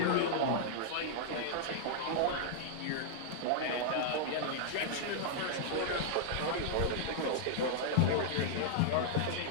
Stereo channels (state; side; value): different; both; correlation -0.01